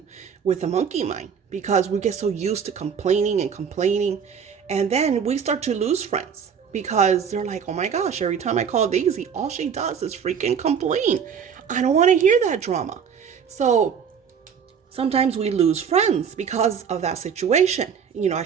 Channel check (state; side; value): quieter; left; 7.2 dB